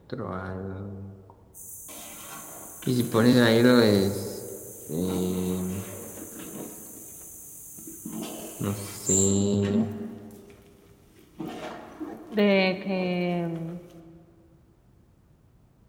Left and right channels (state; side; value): identical; both; correlation 1.00